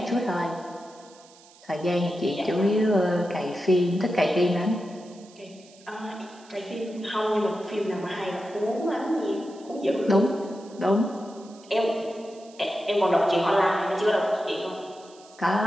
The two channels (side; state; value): right; noise; hiss, 25 dB below the sound